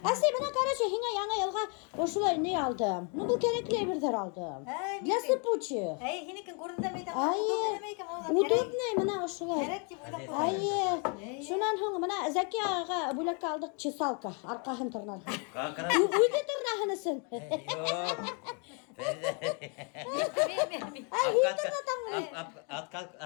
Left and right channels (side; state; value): right; quieter; 36.7 dB